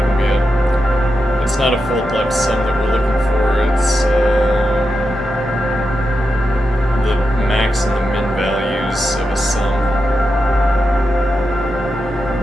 be it. It's not a fold left sum that we're looking for, it's the max and the min values of a sum.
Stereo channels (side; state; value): both; normal; correlation 0.88